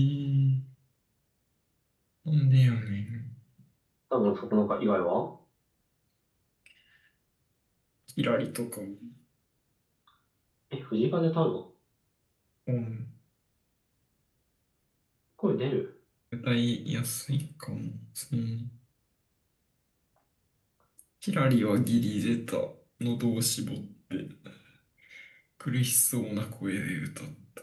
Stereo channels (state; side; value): identical; both; correlation 1.00